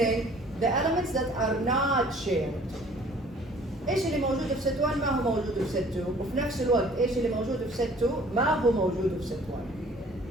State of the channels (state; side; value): normal; both; correlation 0.53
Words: the elements that are not shared. ايش اللي موجود في ست 1 ما هو موجود في ست 2 وفي نفس الوقت ايش اللي موجود في ست 2 ما هو موجود في ست 1.